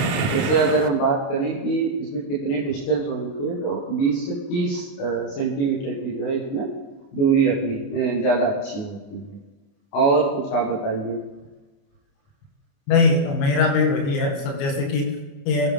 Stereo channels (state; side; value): late; right; 29 ms